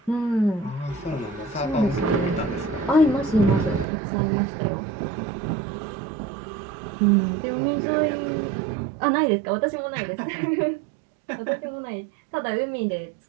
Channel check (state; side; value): drops out; left; at 3.9 s